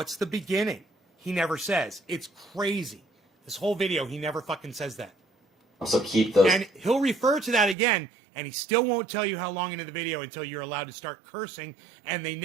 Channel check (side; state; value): left; drops out; at 7.8 s